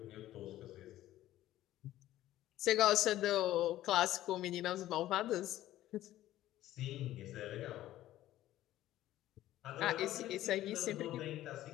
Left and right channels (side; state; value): right; quieter; 14.2 dB